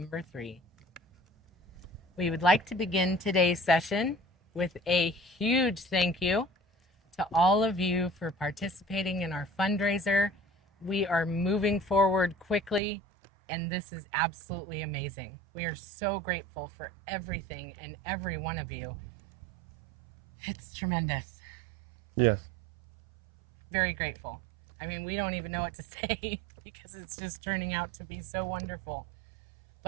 3. We would like to begin today's session with a huge thank you to all of you for participating in our fundraiser. We are moving forward quickly, and this is absolutely amazing. We are so grateful for everything and every one of you. It's tremendous. Yes. Very grateful. I mean, we don't even know what to say because it's just turning out to be so wonderful.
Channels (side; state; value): left; drops out; at 12.8 s